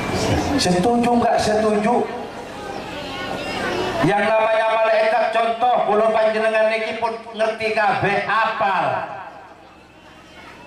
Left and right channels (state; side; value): identical; both; correlation 1.00